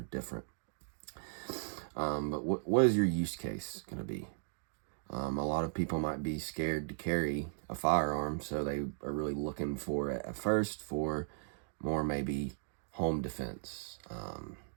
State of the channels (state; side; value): silent; left; digital silence